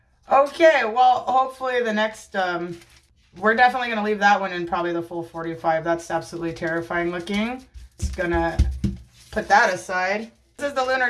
Okay, well, hopefully the next, we're definitely going to leave that one in probably the full 45. That's absolutely terrifying looking. Just going to put that aside. This is the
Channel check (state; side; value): identical; both; correlation 1.00